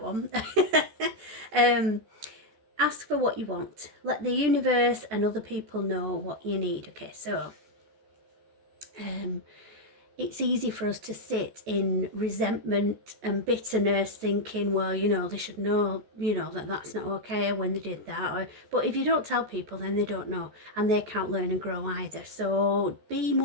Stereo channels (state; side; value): late; left; 14 ms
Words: one. Ask for what you want. Let the universe and other people know what you need. Okay, so it's easy for us to sit in resentment and bitterness, thinking, well, they should know, that that's not okay when they did that. But if you don't tell people, then they don't know, and they can't learn and grow either. So be